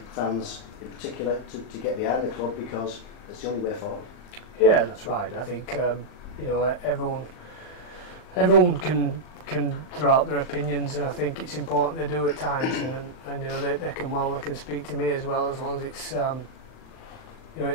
fans in particular, to get behind the club because it's the only way forward. Yeah, that's right. I think you know, everyone can throw out their opinions, and I think it's important they do at times. And you know, they can speak to me as well, as long as it's you know,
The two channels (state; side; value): late; right; 39 ms